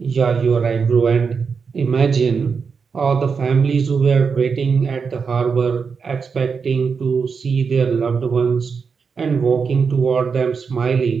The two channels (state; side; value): quieter; left; 5.6 dB